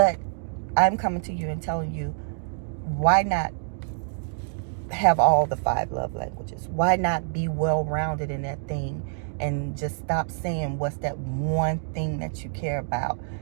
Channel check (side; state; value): left; silent; digital silence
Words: I'm coming to you and telling you, why not have all the 5 love languages? Why not be well-rounded in that thing and just stop saying what's that one thing that you care about,